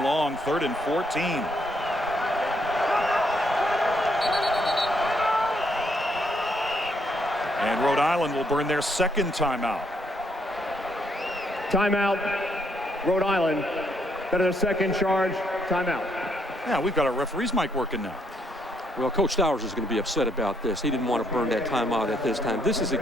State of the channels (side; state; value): both; normal; correlation 0.72